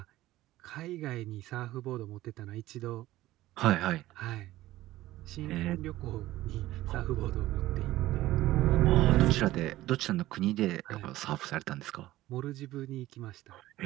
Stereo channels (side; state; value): left; quieter; 16.1 dB